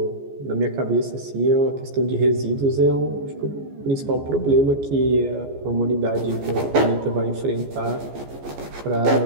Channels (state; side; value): late; left; 14 ms